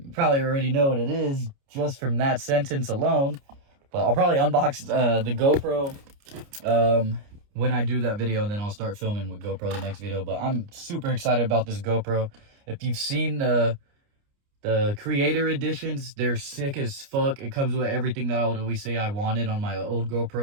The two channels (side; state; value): left; late; 29 ms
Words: you probably already know what it is just from that sentence alone. But I'll probably unbox the GoPro when I do that video, and then I'll start filming with GoPro the next video. But I'm super excited about this GoPro. If you've seen the Creator Editions, they're sick as fuck. It comes with everything that I would always say I wanted on my old